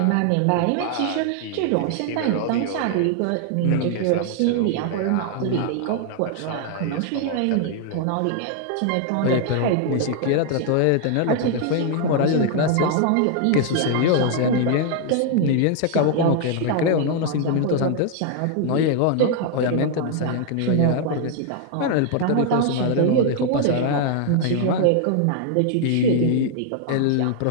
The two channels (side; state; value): both; different; correlation 0.00